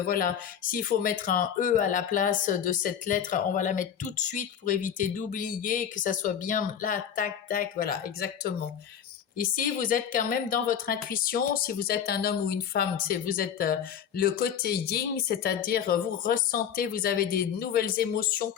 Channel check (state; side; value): quieter; right; 8.6 dB